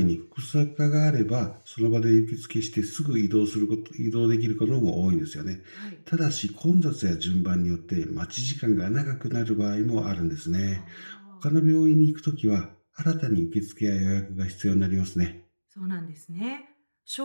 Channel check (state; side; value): inverted; both; correlation -1.00